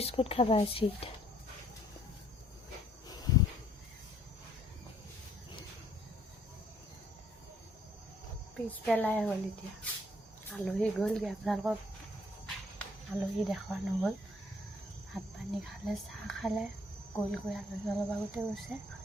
খাব আহিছে। পিছবেলাই হ'ল, এতিয়া আলহী গ'লগৈ। আপোনালোকক আলহী দেখুওৱা নহ'ল। ভাত পানী খালে, চাহ খালে, গৈ আলহী অলপ আগতে গৈছে।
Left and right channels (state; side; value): normal; both; correlation 0.63